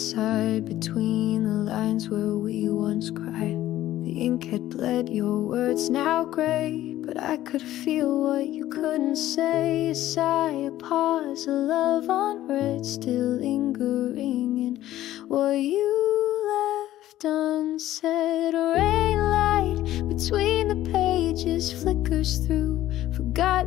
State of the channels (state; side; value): quieter; right; 14.0 dB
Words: between the lines where we once cried. The ink had bled, your words now gray, but I could feel what you couldn't say. A sigh, a pause, a love unread, still lingering in what you left unsaid. A rain light between the pages flickers through